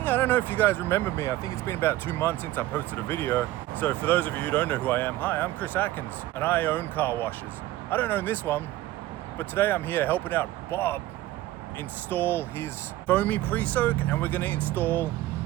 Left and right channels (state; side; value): quieter; left; 15.7 dB